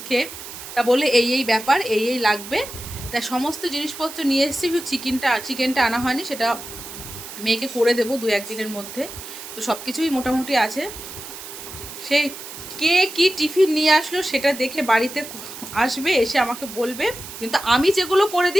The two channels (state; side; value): noise; right; hiss, 12 dB below the sound